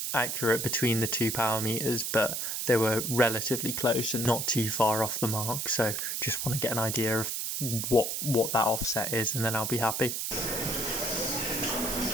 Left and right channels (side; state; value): right; noise; hiss, 2 dB below the sound